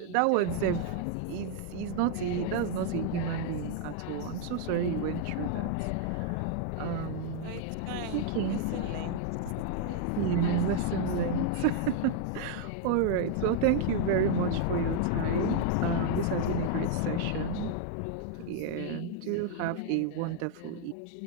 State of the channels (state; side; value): different; both; correlation 0.00